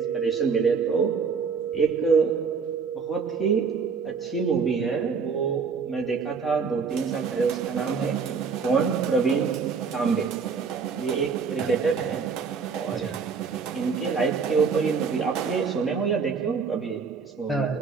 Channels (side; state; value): left; quieter; 5.5 dB